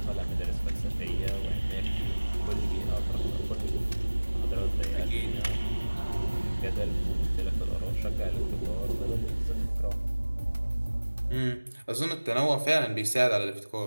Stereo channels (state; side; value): inverted; both; correlation -1.00